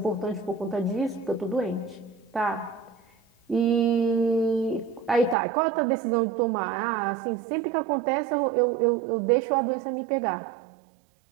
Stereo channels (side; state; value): left; drops out; at 5.4 s